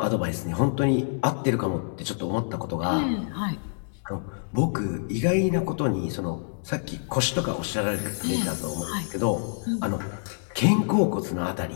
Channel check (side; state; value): right; silent; digital silence